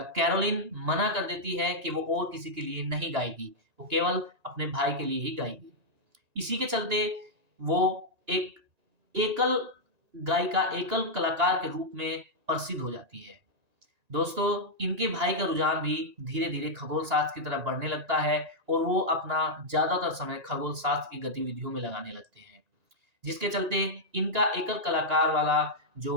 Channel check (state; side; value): late; left; 1.9 ms